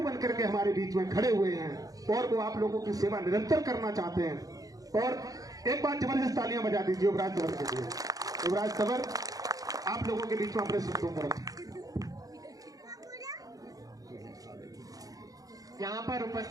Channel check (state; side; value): late; left; 0.17 ms